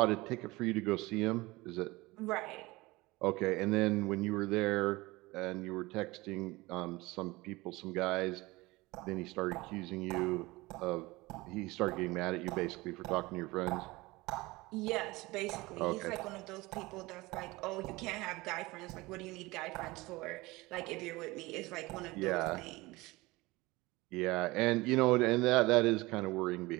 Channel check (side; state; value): left; quieter; 21.4 dB